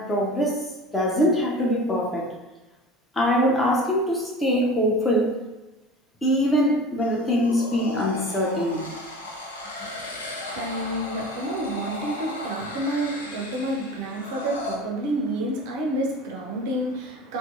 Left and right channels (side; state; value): both; normal; correlation 0.37